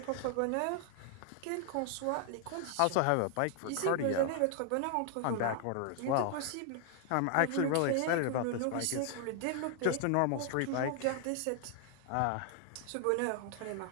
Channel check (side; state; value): both; different; correlation 0.00